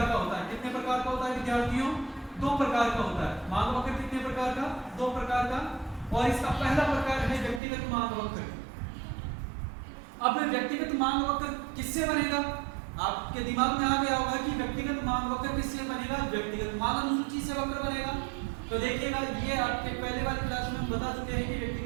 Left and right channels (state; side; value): drops out; left; at 7.6 s